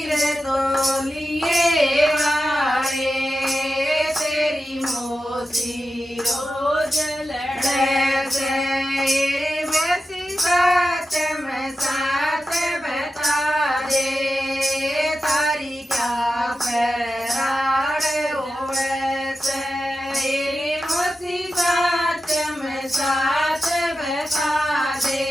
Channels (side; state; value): both; normal; correlation 0.92